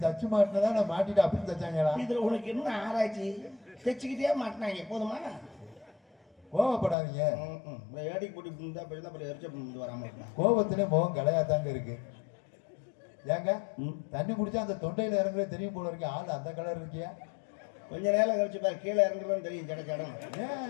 மாட்டினதா நான் மாட்டிட்டு அப்படி தச்சாங்களா? இதுல உனக்கு என்ன ஆராய்ச்சி? தைச்சுக்கிட்டே மாட்டினாங்க போதுமா? கோவப்படாதீங்க. ஏடிக்கு போட்டு இருந்தா போய் அப்புறம் எரிச்ச வராம கோபத்திலே முகம் கலையாதாங்க இருக்கு. ஏங்க தண்ணி குடிச்சா அந்த தொண்டையில இறங்குறது தெரியும் போல இருக்கு. ஆள் அந்த கலர் இருக்கியா? கொஞ்ச நேரம் கழிச்சு பாரு, கீழே இறங்குறதுன்னு தெரியும். ஜடம்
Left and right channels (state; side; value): drops out; right; at 7.0 s